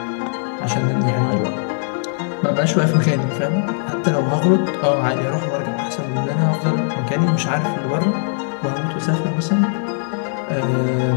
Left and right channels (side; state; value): right; silent; digital silence